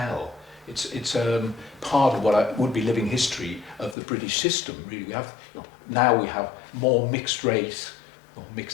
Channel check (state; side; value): drops out; right; at 4.0 s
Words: It's part of what would be living history of the British system. Really, we have now we have more mixed race or